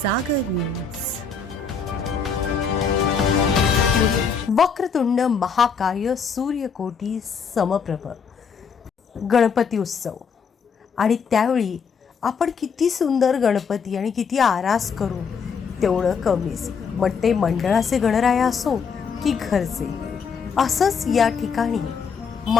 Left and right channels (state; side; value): quieter; right; 5.8 dB